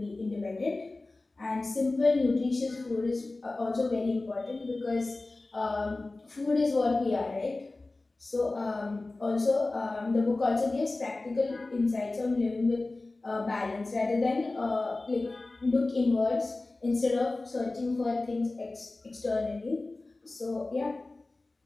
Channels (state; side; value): quieter; right; 3.2 dB